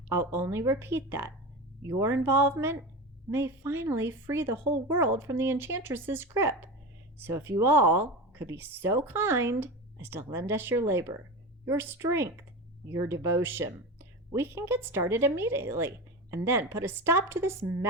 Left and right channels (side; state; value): both; normal; correlation 0.25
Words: I'll only repeat that your involvement may finally free the whole world from the Enchantress's grip. So if you all could be so kind as to lend us your labor, your strength, your devotion, we can get started immediately and then put a stop to this